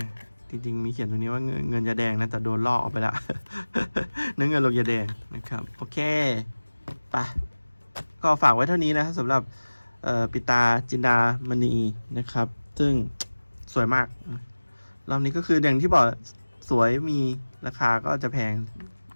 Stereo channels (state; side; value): inverted; both; correlation -1.00